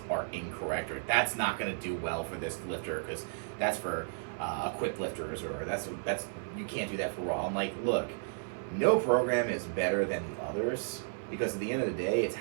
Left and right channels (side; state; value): left; silent; 56 dB below the other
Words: are incorrect, or that's not going to do well for this lifter because that's for equipped lifters, or that's you can't do that for raw. I'm like, look, no program is better than the others, because at the end of the day, it's